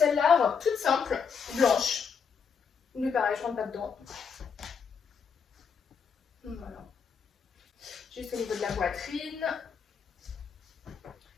robe toute simple, blanche. Mais pareil, je rentre pas dedans. Voilà. Juste au niveau de la poitrine.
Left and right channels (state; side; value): quieter; right; 6.3 dB